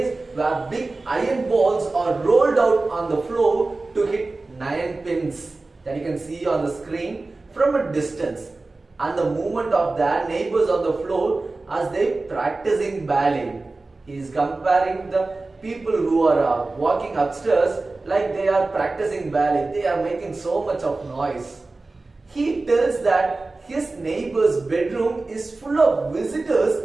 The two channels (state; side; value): quieter; left; 3.4 dB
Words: where big iron balls are rolled out on the floor to hit 9 pins that you can see on the screen from a distance, and the movement of their neighbors on the floor as they practicing ballet. He is comparing the people who are walking upstairs like they are practicing ballet. They are making so much of noise. He tells that his neighbor's bedroom is full of